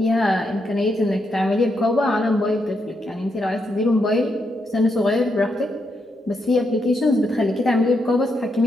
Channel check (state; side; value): normal; both; correlation 0.81